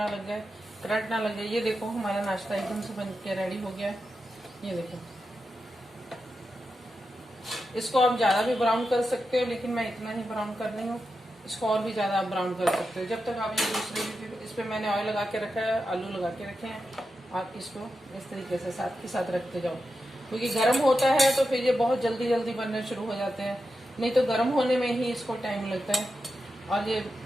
लग जाए, करंट ना लग जाए। ये देखो हमारा नाश्ता एकदम से बन के रेडी हो गया है। ये देखो, इसको आप ज़्यादा भी ब्राउन कर सकते हो, लेकिन मैं इतना ही ब्राउन कर रही हूँ। इसको और भी ज़्यादा आप ब्राउन कर सकते हो। जब तक आप ये दूसरे, इस पर मैंने ऑयल लगा के रखा है, आलू लगा के रखे हैं। आप इसको इस तरीके से साथ के साथ रखते जाओ, क्योंकि गर्म होता है तो फिर ये बहुत जल्दी जल्दी बनने शुरू हो जाते हैं, नहीं तो गर्म होने में ही इसको टाइम लगता है। और ये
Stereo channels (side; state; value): both; normal; correlation 0.89